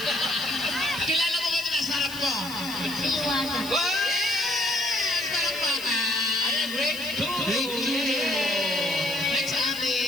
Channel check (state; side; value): noise; left; hiss, 13 dB below the sound